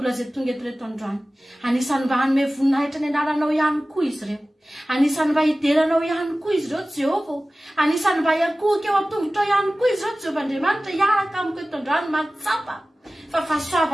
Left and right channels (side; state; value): both; normal; correlation 0.97